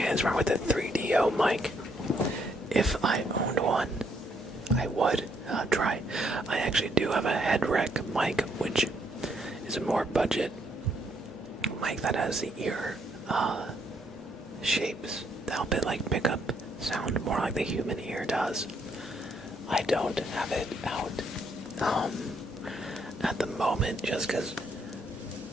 hands-on with a 3DO mic? If I owned one, I would try. I actually do have a head rec mic, which is a more budget mic that has the ear shapes to help it like pick up sound more like the human ear does. I don't have it out at the moment just because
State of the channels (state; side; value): normal; both; correlation 0.72